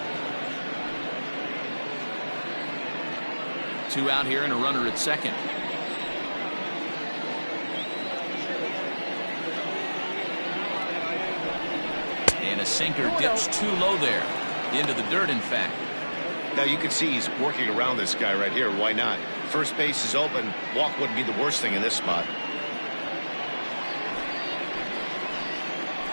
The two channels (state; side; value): inverted; both; correlation -1.00